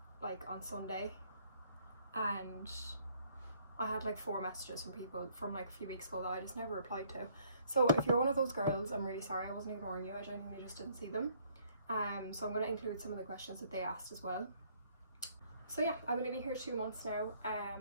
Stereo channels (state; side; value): inverted; both; correlation -0.64